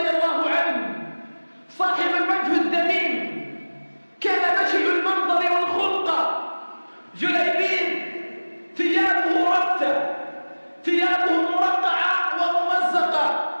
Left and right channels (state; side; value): inverted; both; correlation -1.00